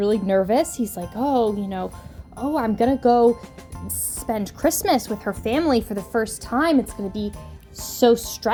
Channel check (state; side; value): identical; both; correlation 1.00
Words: nervous. He's like, I'm gonna go spend Christmas with her family for the first time. It's gonna be so